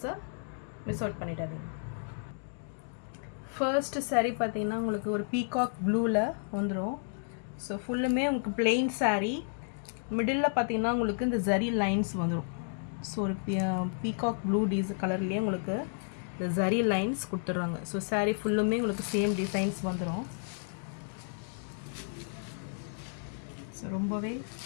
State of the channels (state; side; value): silent; right; digital silence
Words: மிஸ் அவுட் பண்ணிடாதீங்க. ஃபர்ஸ்ட் சாரீ பார்த்தீங்கன்னா உங்களுக்கு ஒரு பீகாக் ப்ளூவில் வந்துடும். ஸோ ஃபுல்லுமே உங்களுக்கு பிளெயின் சாரீ, மிடில் பார்த்தீங்கன்னா உங்களுக்கு இந்த ஜரி லைன்ஸ் வந்துடும். ஸோ ஒரு பீகாக் ப்ளூ கலர்லேயே உங்களுக்கு இந்த ஜரி லைன்ஸ் கொடுத்துட்றாங்க. ஸோ சாரீ ஃபுல்லுமே உங்களுக்கு சேம் டிசைன்ஸ் வந்துடும். ஸோ ரொம்பவே